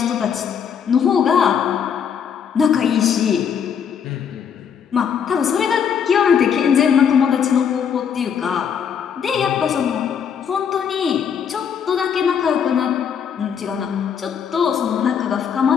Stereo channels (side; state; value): right; quieter; 7.6 dB